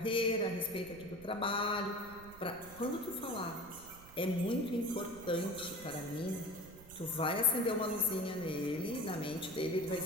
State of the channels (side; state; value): right; noise; rumble, 19 dB below the sound